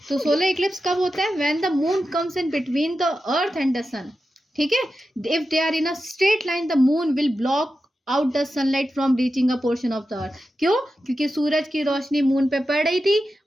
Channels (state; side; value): normal; both; correlation 0.91